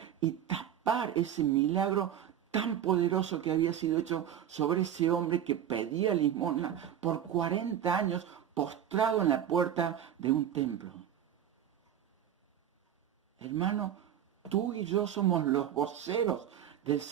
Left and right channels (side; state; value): left; quieter; 10.0 dB